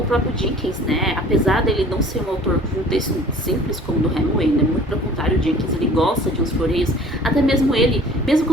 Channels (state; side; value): normal; both; correlation 0.48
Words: próprio Dickens, né? Apesar dele não ser um autor de um texto simples como o do Hemingway, né? Muito pelo contrário, o Dickens, ele gosta de uns floreios, até mesmo ele, mesmo